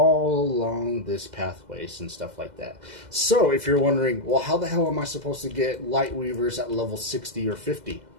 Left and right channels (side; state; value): left; late; 2.0 ms